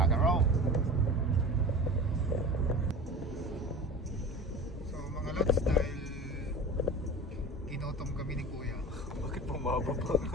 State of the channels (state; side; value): normal; both; correlation 0.35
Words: and roll. So mga lods, dahil ginutom kami ni Kuya. Bakit bumababa